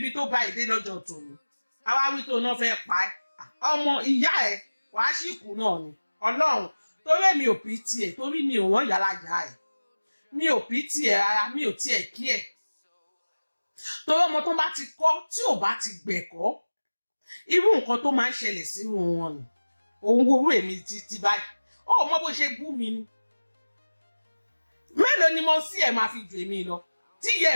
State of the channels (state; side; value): inverted; both; correlation -1.00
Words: tó bá ìdé lọ́jọ́ tòun àwa wí tó náà fẹ́ pa ẹ́ ọmọ ìyá ẹ̀ wàá sì kú náà ni ọlọ́run torí mi ò pí tiẹ̀ torí mi ò wọ́n yàrá ìyá ẹ̀ mi ò pí tiẹ̀ rárá mi ò tiẹ̀ kí ẹ̀ torí ọmọ tó bá ti kọ́ tí ò bá ti gbẹ̀kọ́ irú nǹkan tó máa ń ṣẹlẹ̀ sínú wọn ni òun wo èmi títí báyìí ó mọ bó ṣe bú mi ni mélòó ni mo sí ẹ̀ máa fi jù èmi lọ tí ìyá